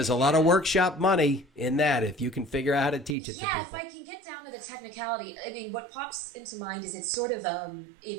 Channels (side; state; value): left; drops out; at 3.2 s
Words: a lot of workshop money in that if you can figure out how to teach it to people. Yeah, if I can get down to the technicality, I mean, what pops into mind is it's sort of,